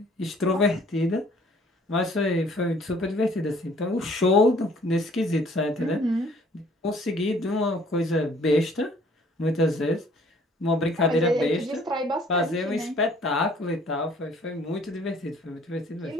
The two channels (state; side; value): normal; both; correlation 0.57